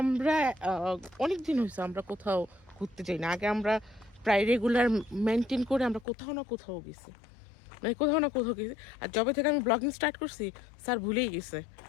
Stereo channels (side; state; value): right; drops out; at 6.1 s